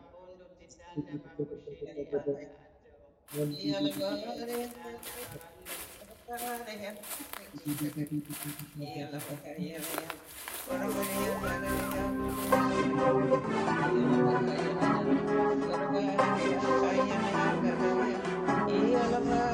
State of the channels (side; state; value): both; identical; correlation 1.00